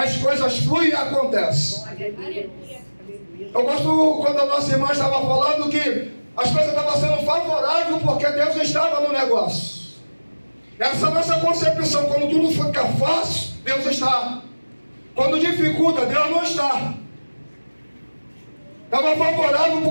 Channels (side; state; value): both; inverted; correlation -1.00